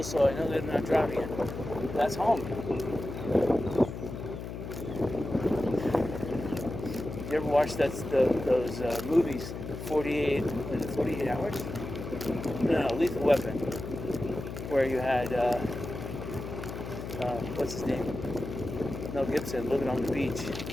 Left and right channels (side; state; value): left; noise; hum, 8 dB below the sound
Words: so I know they're not driving it. That's home. You ever watch those movies, 48 Hours? No, Lethal Weapon, where you had, what's his name? Mel Gibson living on the beach in